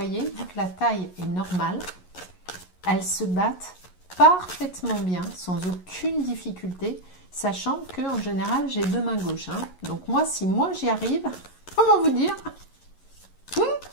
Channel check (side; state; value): right; late; 11 ms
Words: vu que la taille est normale, elles se battent parfaitement bien, sans aucune difficulté, sachant que en général, j'ai deux mains gauches. Hein. Donc moi, si moi j'y arrive, comment vous dire